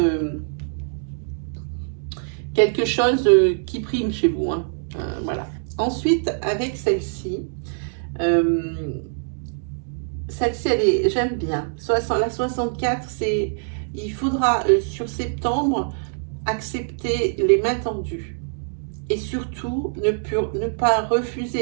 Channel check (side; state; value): left; silent; digital silence